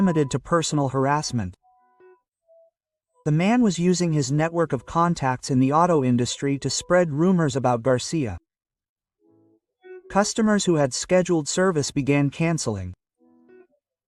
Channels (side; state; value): both; identical; correlation 1.00